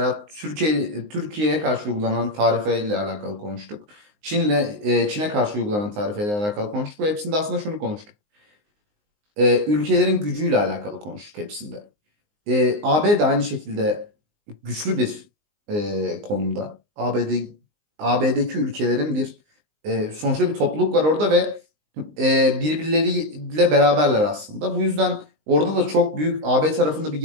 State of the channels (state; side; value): late; left; 19 ms